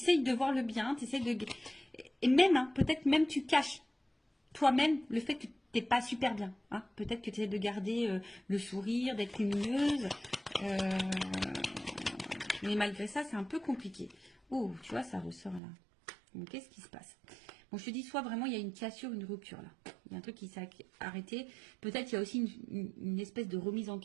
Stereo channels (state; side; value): drops out; left; at 15.6 s